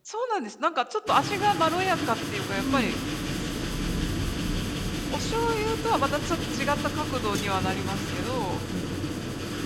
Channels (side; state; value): both; identical; correlation 1.00